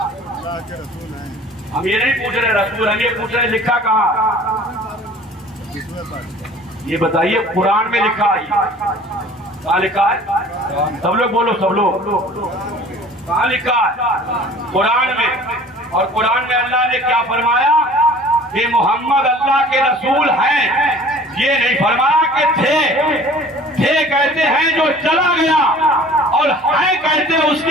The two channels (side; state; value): both; normal; correlation 0.47